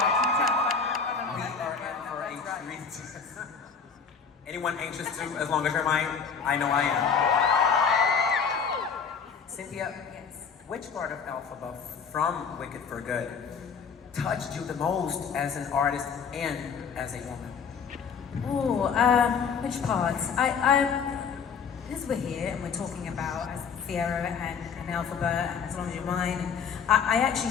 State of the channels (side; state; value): right; quieter; 6.2 dB